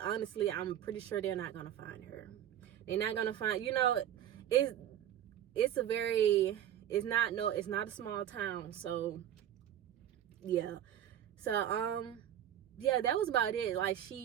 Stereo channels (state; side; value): quieter; left; 10.8 dB